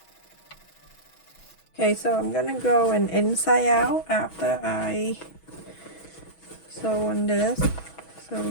Okay, so I'm gonna go and inside out after I sew on this. So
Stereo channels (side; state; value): right; late; 6.2 ms